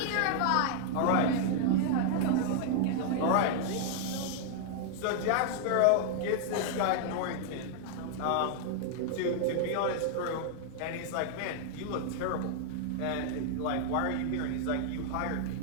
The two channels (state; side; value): different; both; correlation 0.00